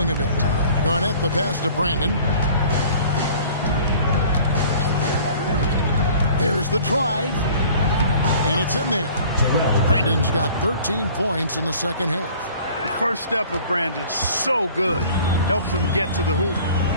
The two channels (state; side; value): inverted; both; correlation -0.49